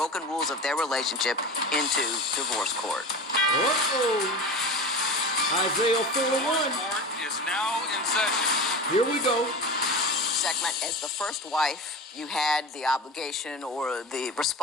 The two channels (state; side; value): normal; both; correlation 0.30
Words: rules of their relationship into divorce court. Isaiah 4:1 is now in session. Here we go. Segment, as the first wife, you had the obligation or the